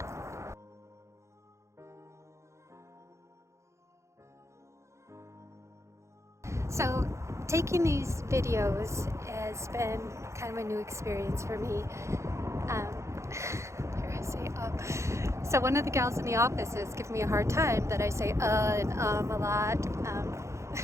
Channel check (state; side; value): late; left; 0.14 ms